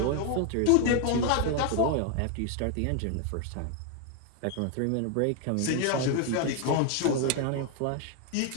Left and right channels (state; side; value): different; both; correlation 0.01